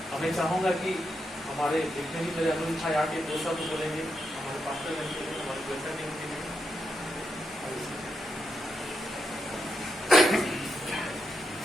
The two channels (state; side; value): normal; both; correlation 0.84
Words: मैं चाहूँगा कि हमारे जितने भी मेरे अनुरोध था आगे 2 शब्द बोलेंगे हमारे पास्टर जन के लिए, हमारे कोईछा टीम के लिए।